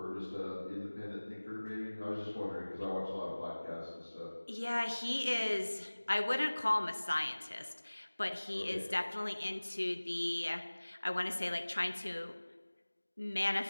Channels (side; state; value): both; inverted; correlation -1.00